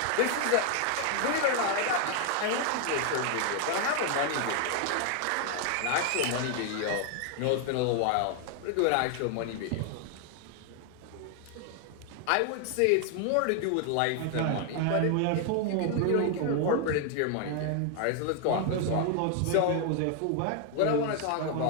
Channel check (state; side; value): different; both; correlation 0.00